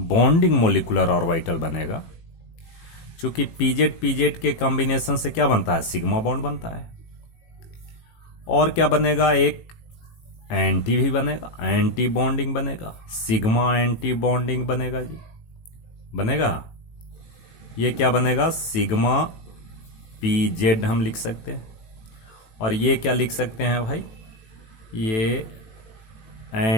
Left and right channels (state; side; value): late; right; 18 ms